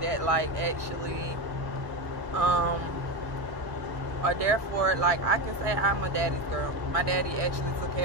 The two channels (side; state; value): left; late; 1.6 ms